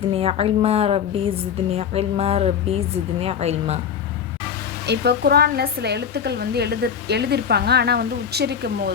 இல்மா ரப்பி ஜித்னி இல்மா ரப்பி ஜித்னி இல்மா. இப்போ குரானில் சில எழுத்துக்கள் வந்து எழுதியிருப்பாங்க, ஆனால் வந்து உச்சரிக்கும்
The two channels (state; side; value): quieter; right; 7.6 dB